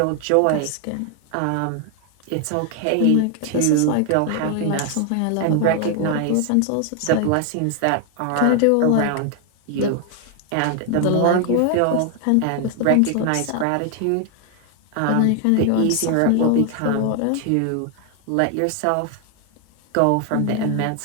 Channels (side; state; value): both; different; correlation 0.00